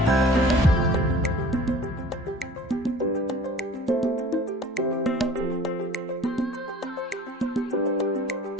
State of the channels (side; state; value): both; normal; correlation 0.46